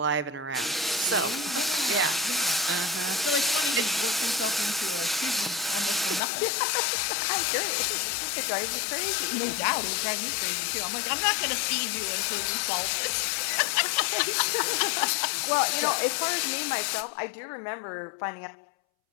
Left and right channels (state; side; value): drops out; right; at 6.2 s